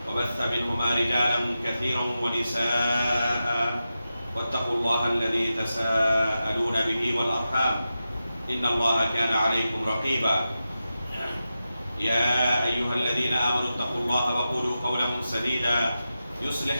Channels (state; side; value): inverted; both; correlation -0.91